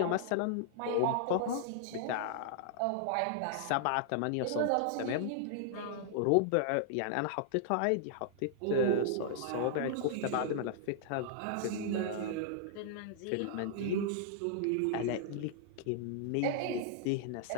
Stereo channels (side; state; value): both; different; correlation -0.01